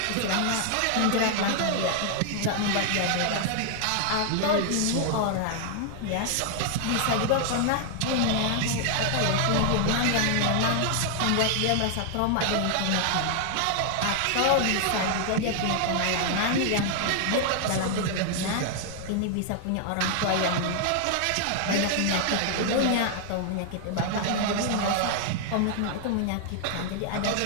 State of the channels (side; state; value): both; different; correlation 0.00